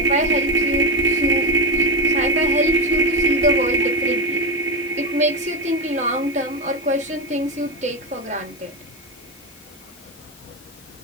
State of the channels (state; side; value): normal; both; correlation 0.16